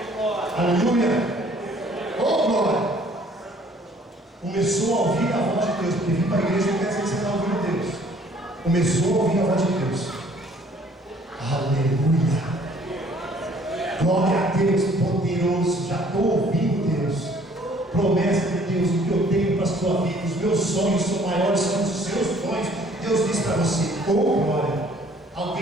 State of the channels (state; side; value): normal; both; correlation 0.58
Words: Aleluia! Oh, glória! Começou a ouvir a voz de Deus, porque vir para a igreja não quer dizer que você está ouvindo Deus. Começou a ouvir a voz de Deus. Aleluia! Glória a Deus, poderoso. Já estou ouvindo Deus. Promessa de Deus, o que eu tenho para a sua vida. Os meus sonhos são maiores que os seus sonhos. Deus diz para você: oh glória!